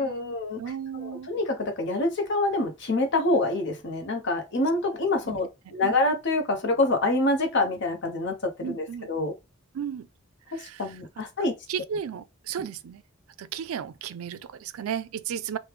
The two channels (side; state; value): both; normal; correlation 0.12